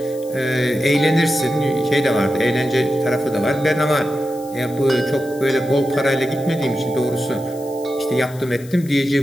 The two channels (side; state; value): left; noise; hiss, 21 dB below the sound